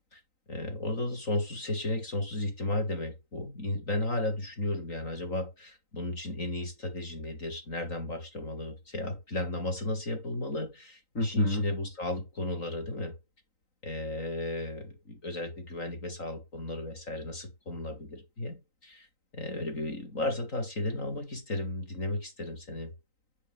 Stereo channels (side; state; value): right; late; 3.9 ms